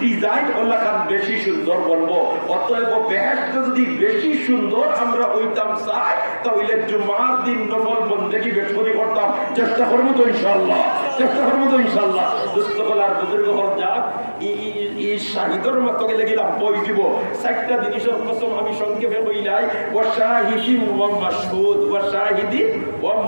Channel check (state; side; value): inverted; both; correlation -1.00